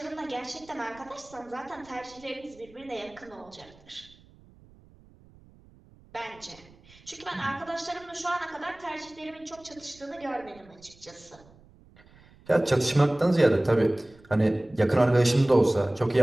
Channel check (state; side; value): noise; right; rumble, 26 dB below the sound